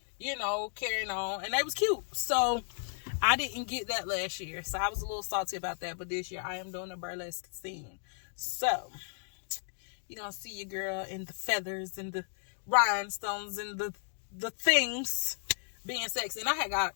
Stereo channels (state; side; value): silent; right; digital silence